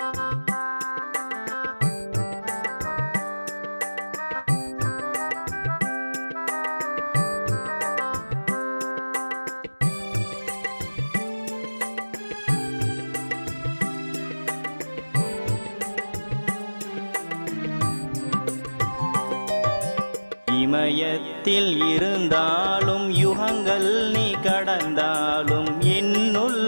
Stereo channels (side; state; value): both; inverted; correlation -1.00